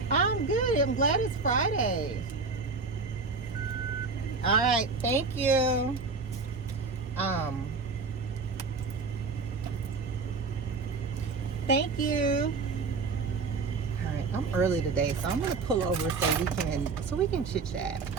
I'm good. I'm glad it's Friday. All right. Thank you. Thank you. All right. I'm early today, so I'm gonna pull over so we can chit chat,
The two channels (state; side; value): quieter; left; 4.3 dB